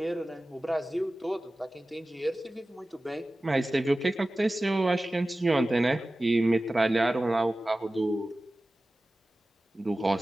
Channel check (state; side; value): normal; both; correlation 0.96